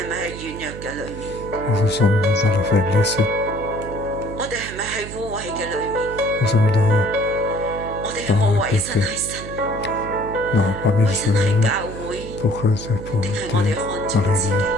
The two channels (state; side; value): noise; right; hum, 11 dB below the sound